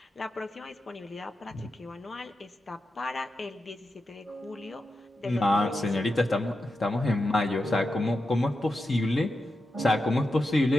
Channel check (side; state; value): both; normal; correlation 0.89